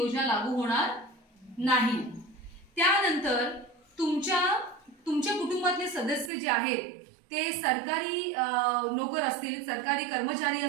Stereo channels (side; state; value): left; drops out; at 6.3 s